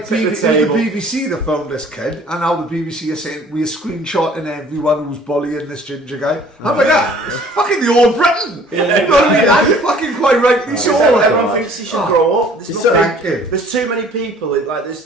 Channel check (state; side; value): normal; both; correlation 0.53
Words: tip it was the BBC that found this kid, and now the BBC are saying we are screenshotting everyone who's bullying this ginger guy. I'm like, it's fucking the All Britain. Yeah, you know what I mean? That's fucking quite rightly so. Everyone thinks he should grow up. There's too many people. Like